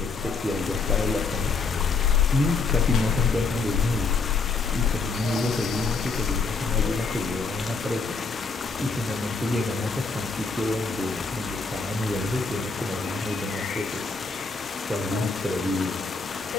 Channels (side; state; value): right; quieter; 4.3 dB